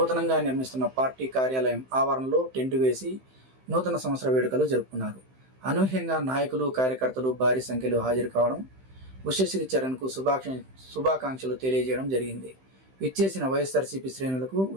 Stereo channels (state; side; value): late; left; 15 ms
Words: నిర్మిస్తున్న పార్టీ కార్యాలయం ఆవరణలో టెంట్ వేసి నూతన సంవత్సర వేడుకలు జరుపుకున్నారు. అనూహ్యంగా నాయకులు, కార్యకర్తలు భారీ సంఖ్యలో హాజరు కావడం, ఉషశ్రీ చరణ్కు శుభాకాంక్షలు తెలియజేయడం జరిగింది. విచ్చేసిన వైఎస్ఆర్సీపీ శ్రేణులకు